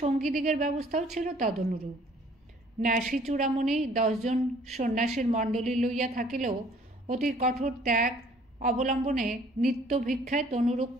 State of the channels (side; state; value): both; normal; correlation 0.57